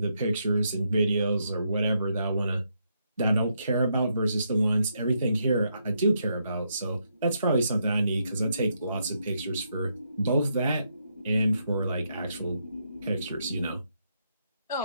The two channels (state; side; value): inverted; both; correlation -0.78